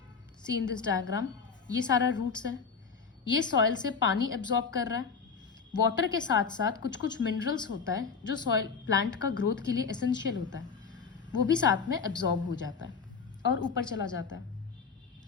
see in this diagram, ये सारा roots है. ये soil से पानी absorb कर रहा है. Water के साथ साथ कुछ कुछ मिनरल्स होता है जो सॉइल प्लांट का ग्रोथ के लिए एसेंशियल होता है, वो भी साथ में एब्जॉर्ब हो जाता है और ऊपर चला जाता है.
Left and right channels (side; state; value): right; quieter; 5.5 dB